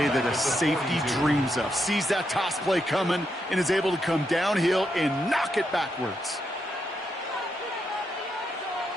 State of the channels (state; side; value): normal; both; correlation 0.82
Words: that a safety dreams of. Sees that toss play coming and is able to come downhill and knock it backwards.